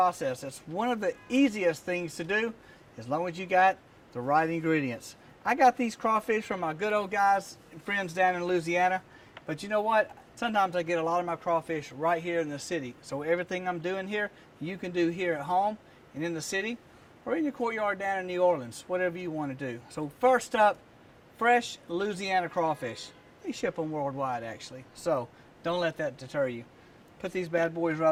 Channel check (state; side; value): identical; both; correlation 1.00